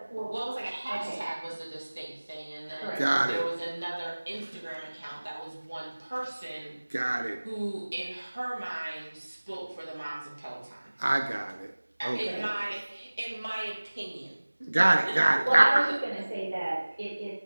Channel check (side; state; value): both; inverted; correlation -1.00